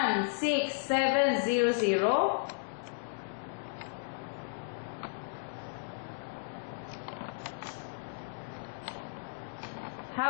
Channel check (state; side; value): silent; right; digital silence